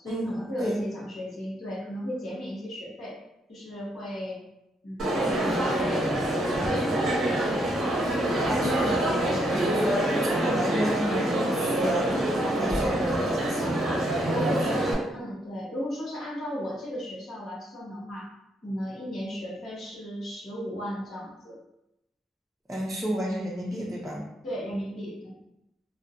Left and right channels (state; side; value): normal; both; correlation 0.74